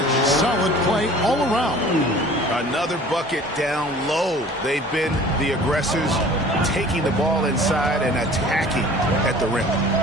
Solid play all around. Another bucket down low. They've been the aggressors, taking the ball inside and attacking at the rim.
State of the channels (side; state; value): both; normal; correlation 0.47